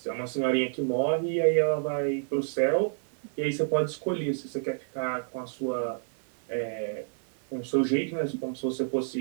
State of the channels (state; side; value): silent; left; digital silence